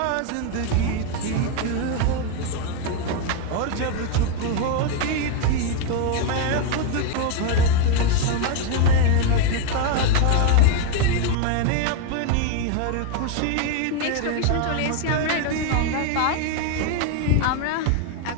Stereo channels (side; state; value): both; different; correlation 0.01